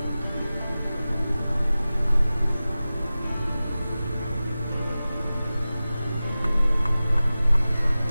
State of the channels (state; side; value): inverted; both; correlation -0.96